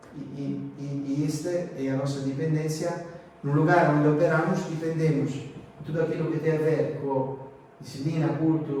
E esta é a nossa dependência. No lugar onde operamos, dependemos de tudo aquilo que tem a ver com disciplina,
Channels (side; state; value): both; identical; correlation 1.00